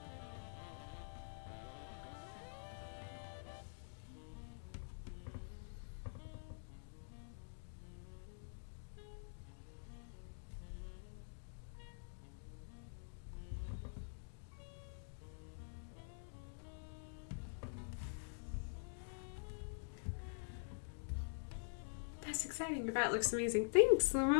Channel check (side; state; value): right; silent; digital silence